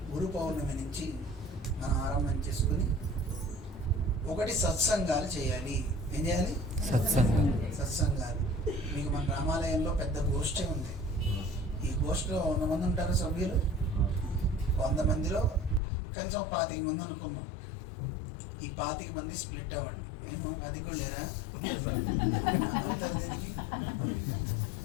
పౌర్ణమి నుంచి మనం ఆరంభం చేసుకుని ఒకటి సత్సంగాలు చేయాలి. ఏం చేయాలి? సత్సంగాలు. మీకు మన రామాలయంలో పెద్ద గోష్ఠి ఉంది. ఈ గోష్ఠిలో 100 మంది ఉంటారు సభ్యులు. 100 మందిలో కనీసం 25 మంది అనుకున్నాం. ఈ 25 మంది స్ప్లిట్ అవ్వండి. మేము 10 కూడా లేరా అవుతారు దీనికి?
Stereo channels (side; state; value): right; drops out; at 15.8 s